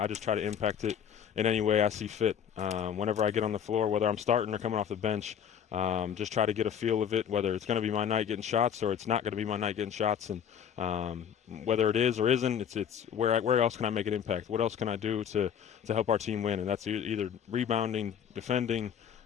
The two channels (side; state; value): right; quieter; 8.5 dB